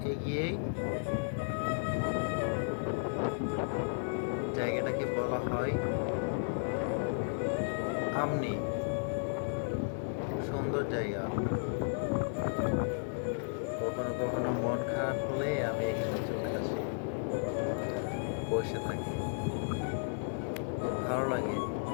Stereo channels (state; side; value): silent; right; 55 dB below the other